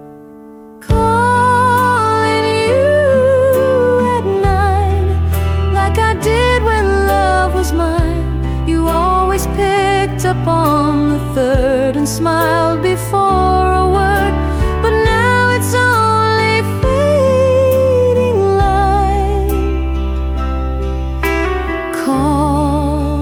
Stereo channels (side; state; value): both; identical; correlation 1.00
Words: Up on the third and smiled before a word, but now it's only fading light,